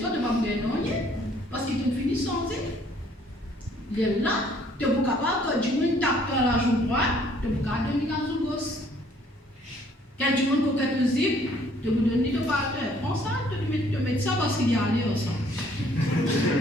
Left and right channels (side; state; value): both; normal; correlation 0.61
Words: tu vas me gagner parce qu'ils t'ont fini sans dire. Il est là, tu es capable que du monde tape à la joue droite, tu es capable de donner la joue gauche. Quand du monde coquette au zip, tu vous donnes le partenaire. Prends ça, tu mets ça parce qu'il y a allé ensemble.